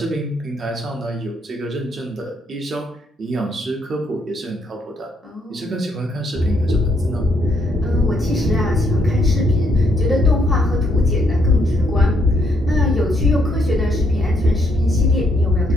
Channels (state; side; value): normal; both; correlation 0.73